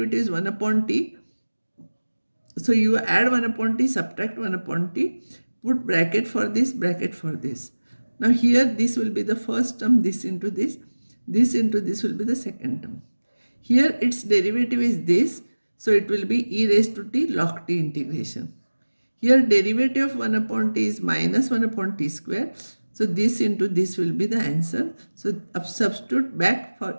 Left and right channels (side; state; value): both; inverted; correlation -1.00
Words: is 1 upon t. So you add 1 upon t, subtract 1 upon t, put bracket for this, bracket for this. Now here this will be the first term, this into this into this will be the second term. Here its derivative is this, so it will be e raised to t log t integration. Here derivative of 1 upon t is minus 1 upon t square. So this into this will be the answer. So substitute back for